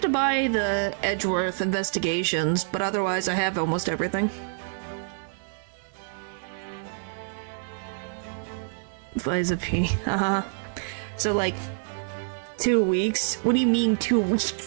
to buy the Edgeworth investigations, but otherwise I have almost everything. Liza P. So, like, 2 weeks? What do you mean 2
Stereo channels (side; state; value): left; silent; digital silence